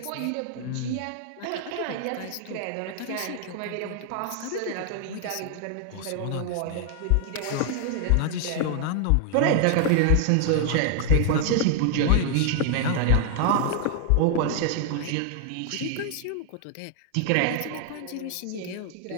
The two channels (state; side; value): different; both; correlation 0.00